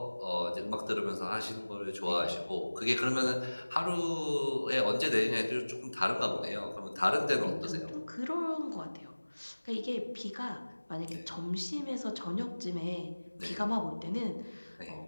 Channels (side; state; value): both; inverted; correlation -1.00